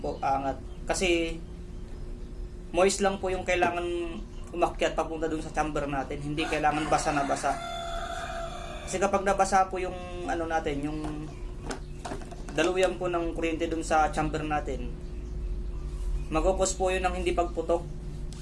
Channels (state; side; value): identical; both; correlation 1.00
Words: angat. Kasi moist lang po yung kailangan umakyat papunta dun sa chamber natin. Hindi kailangan basa na basa. Kasi kapag nabasa po yung yung daluyan po ng kuryente dun sa chamber natin, magkukos po yun ng hindi pagputok.